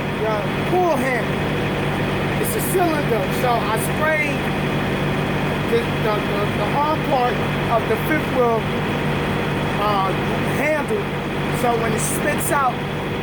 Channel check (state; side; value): identical; both; correlation 1.00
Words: pull handle. It's a cylinder. So I sprayed the arm part of the fifth wheel handle, so when it spits out,